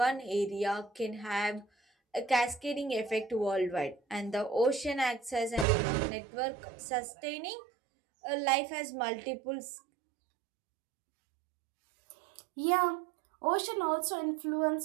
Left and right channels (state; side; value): drops out; left; at 5.7 s